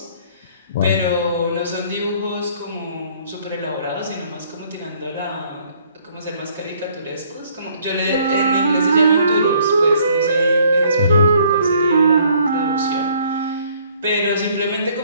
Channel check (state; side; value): inverted; both; correlation -0.61